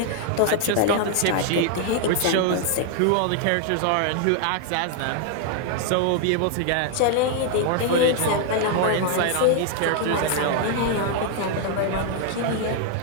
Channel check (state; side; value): different; both; correlation 0.00